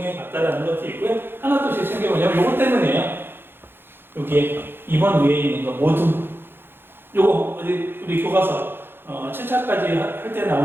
봤다라는 것도 있고요. 하나 또 제 챙겨보냐면, 요거 때문이에요. 여기에 2번 위에 있는 거 모두. 요거 우리 교과서 7차까지 할 때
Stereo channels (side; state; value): left; late; 0.10 ms